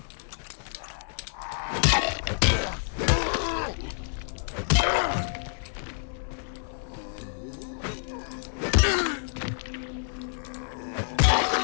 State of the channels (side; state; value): right; silent; digital silence